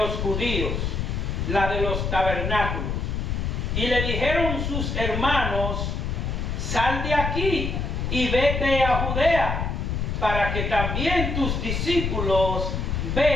judíos, la de los tabernáculos. Y le dijeron sus hermanos: sal de aquí y vete a Judea, para que también tus discípulos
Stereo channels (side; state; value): left; noise; rumble, 1 dB below the sound